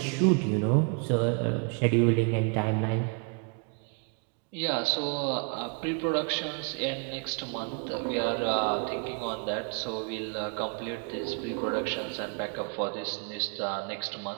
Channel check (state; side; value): quieter; left; 37.3 dB